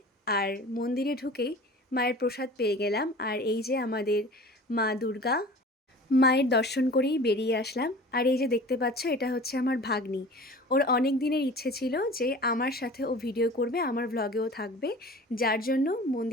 আর মন্দিরে ঢুকেই মায়ের প্রসাদ পেয়ে গেলাম। আর এই যে আমাদের মা দুর্গা, মায়ের দর্শন করেই বেরিয়ে আসলাম। আর এই যে দেখতে পাচ্ছ, এটা হচ্ছে আমার ভাগ্নি। ওর অনেক দিনের ইচ্ছে ছিল যে আমার সাথে ও ভিডিও করবে, আমার ভ্লগেও থাকবে, যার জন্য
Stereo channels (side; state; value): both; normal; correlation 0.41